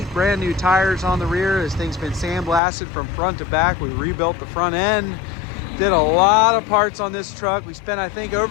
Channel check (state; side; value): drops out; right; at 2.6 s